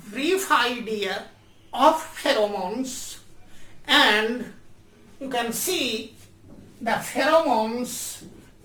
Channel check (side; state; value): both; identical; correlation 1.00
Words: brief idea of pheromones, and you can see the pheromones